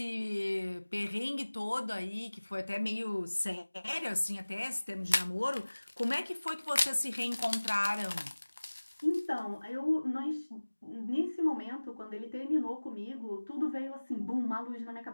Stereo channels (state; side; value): inverted; both; correlation -1.00